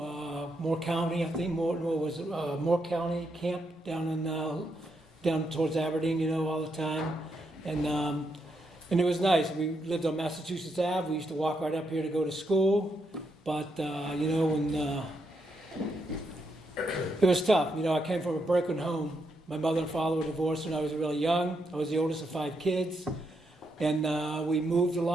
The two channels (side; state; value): both; normal; correlation 0.80